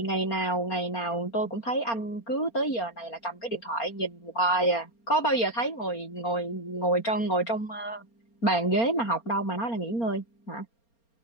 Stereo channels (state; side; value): late; right; 4.3 ms